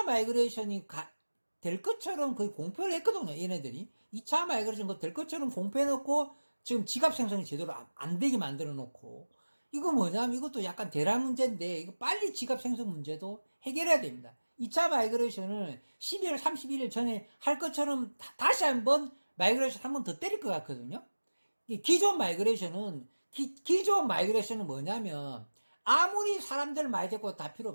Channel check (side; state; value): both; inverted; correlation -1.00